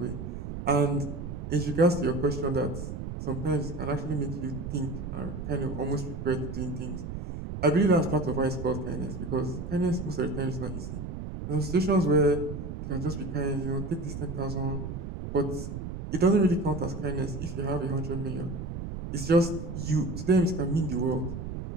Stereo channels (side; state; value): right; noise; rumble, 7 dB below the sound